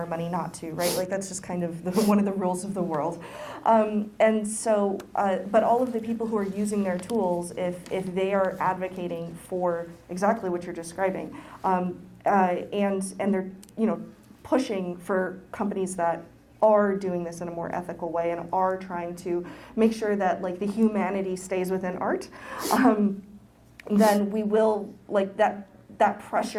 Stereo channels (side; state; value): both; identical; correlation 1.00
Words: money not to, right? Like, that's just kind of one of the rules of the world. And so, but all of the people who are using their tools, if they are advocating for exactly what you're describing, and they're pushing for companies that are doing this in a more ethical way and are trying to make sure that, like, the humanity stays within art, then we will, like, that